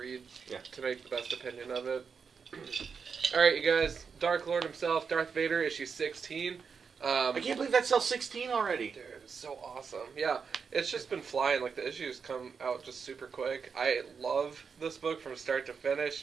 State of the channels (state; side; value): quieter; left; 5.9 dB